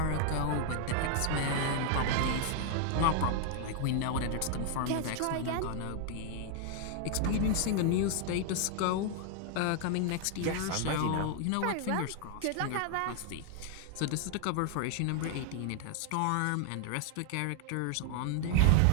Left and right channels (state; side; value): different; both; correlation 0.00